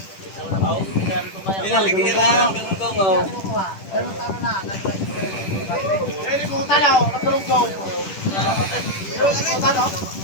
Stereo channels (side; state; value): right; late; 10 ms